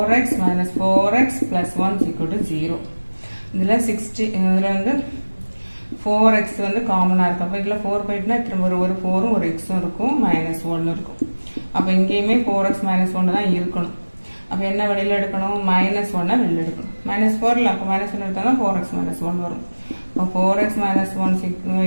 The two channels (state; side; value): inverted; both; correlation -1.00